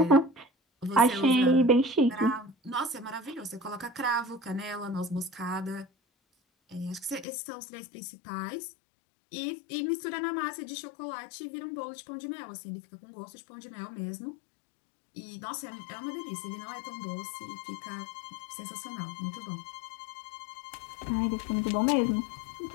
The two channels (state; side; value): drops out; right; at 7.2 s